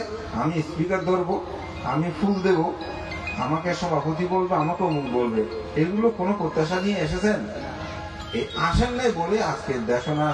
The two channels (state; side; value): identical; both; correlation 1.00